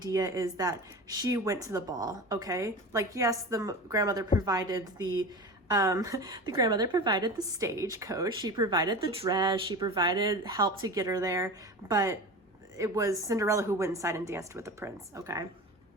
is that she went to the ball, okay? Like, yes, the grandmother provided the grandmother provided the stagecoach, she provided the dress, she provided help to get her there, but it was Cinderella who went inside and danced with the prince, okay?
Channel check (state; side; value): normal; both; correlation 0.30